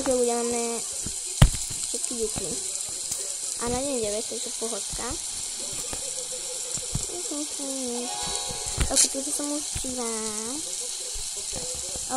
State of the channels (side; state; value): both; identical; correlation 1.00